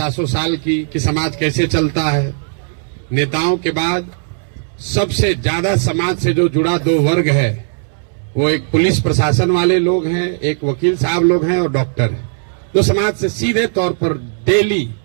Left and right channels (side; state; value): left; silent; 69 dB below the other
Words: साल की कि समाज कैसे चलता है। नेताओं के बाद सबसे ज्यादा समाज से जो जुड़ा 2 वर्ग है, वो एक पुलिस प्रशासन वाले लोग हैं, एक वकील साहब लोग हैं और डॉक्टर हैं, जो समाज से सीधे तौर पर डेली